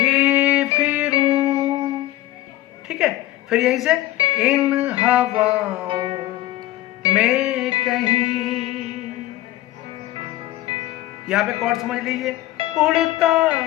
फिरूं, ठीक है। फिर यहीं से इन हवाओं में कहीं, यहां पे कॉर्ड समझ लीजिए, उड़ता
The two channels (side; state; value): right; quieter; 15.8 dB